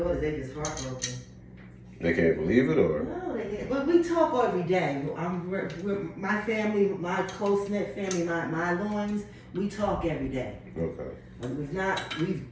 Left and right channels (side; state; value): both; identical; correlation 1.00